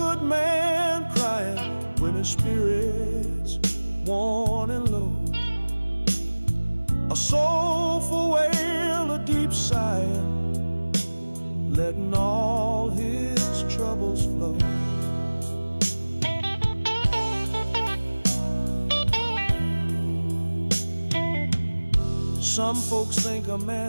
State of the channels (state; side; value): inverted; both; correlation -1.00